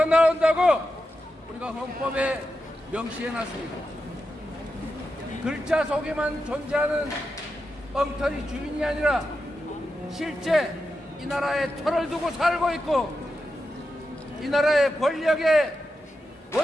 나온다고 우리가 헌법에 명시해놨습니다. 글자 속에만 존재하는 엉터리 주인이 아니라 실제 이 나라에 터를 두고 살고 있고, 이 나라의 권력의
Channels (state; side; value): normal; both; correlation 0.89